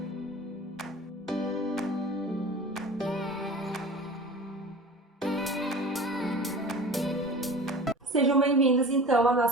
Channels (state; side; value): normal; both; correlation 0.38